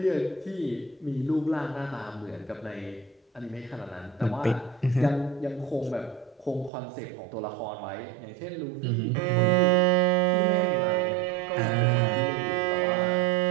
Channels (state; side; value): drops out; left; at 6.7 s